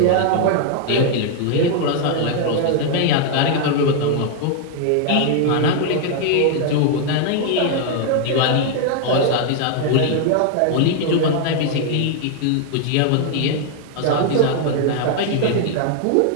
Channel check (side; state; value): both; different; correlation 0.00